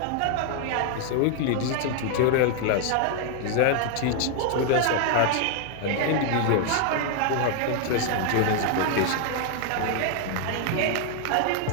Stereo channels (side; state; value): both; different; correlation 0.00